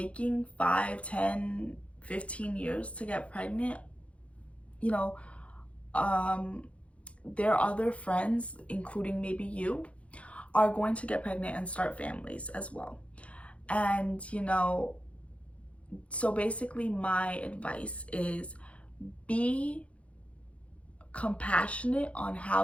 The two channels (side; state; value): right; late; 0.063 ms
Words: 5, 10, 15 years to get pregnant, you know, their other friends, including maybe you, are going to get pregnant and start families as well. And, you know, so basically my advice is be compassionate on how